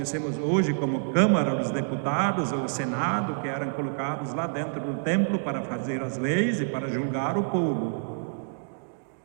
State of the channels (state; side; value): silent; left; digital silence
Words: hoje como Câmara dos Deputados, ou o Senado, que eram colocados lá dentro do templo para fazer as leis e para julgar o povo.